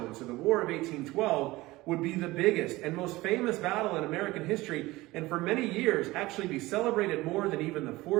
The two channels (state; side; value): quieter; left; 19.5 dB